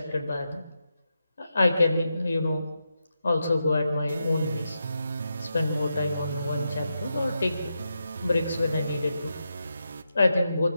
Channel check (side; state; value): both; inverted; correlation -0.87